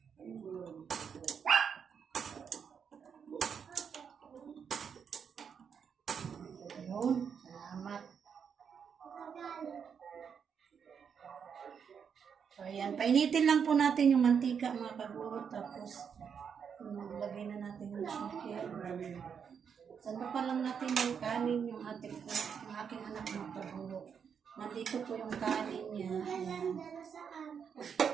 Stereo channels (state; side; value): quieter; left; 7.0 dB